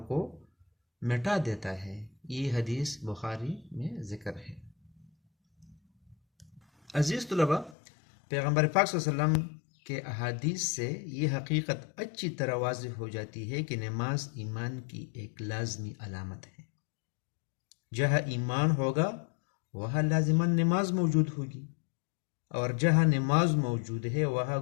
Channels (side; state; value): right; drops out; at 7.8 s